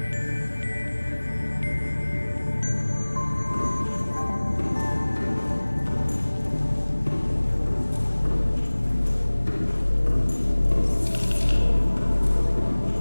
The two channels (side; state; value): both; inverted; correlation -1.00